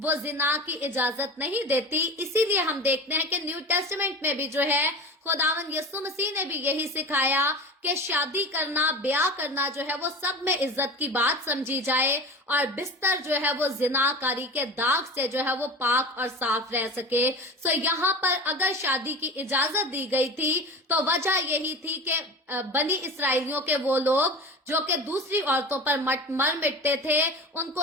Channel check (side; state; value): both; normal; correlation 0.32